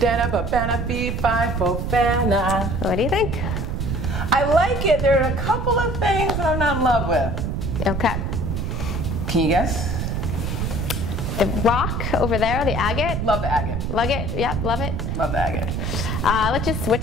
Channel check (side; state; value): right; noise; rumble, 2 dB below the sound